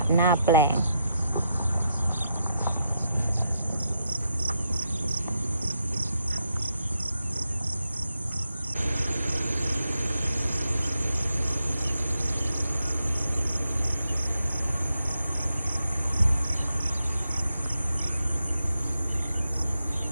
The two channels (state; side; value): inverted; both; correlation -0.82